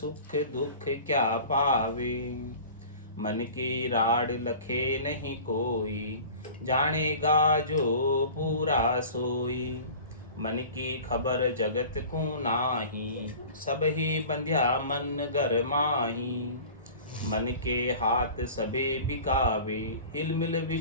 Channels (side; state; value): both; inverted; correlation -0.41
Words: दुख क्या पावे। मन की राड लखे नहीं कोई, जानेगा जो पूरा सोई। मन की खबर जगत को नाही, सब ही बंध्या मन घर माही। मन के हाथ सबे बिकावे, हिल मिल